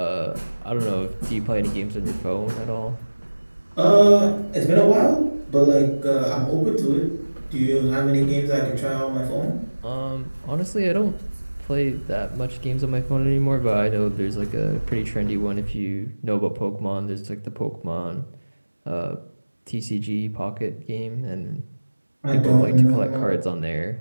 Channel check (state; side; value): inverted; both; correlation -1.00